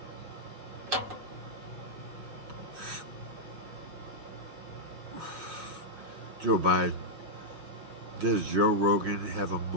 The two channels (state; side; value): late; left; 6.2 ms